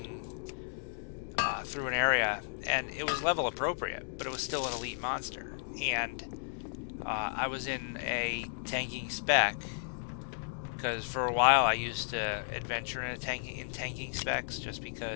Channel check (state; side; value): silent; right; digital silence